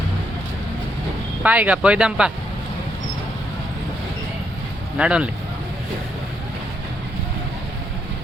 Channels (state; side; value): normal; both; correlation 0.76